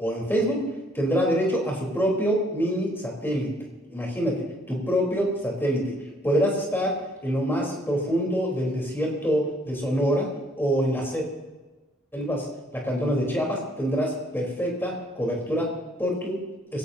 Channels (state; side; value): normal; both; correlation 0.65